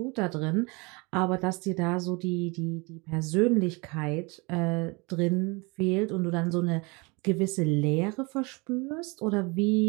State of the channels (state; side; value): quieter; left; 27.9 dB